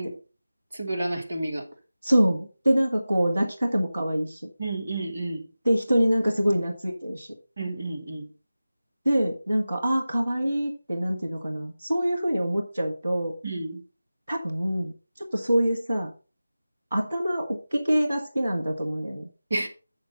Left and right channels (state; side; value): inverted; both; correlation -0.96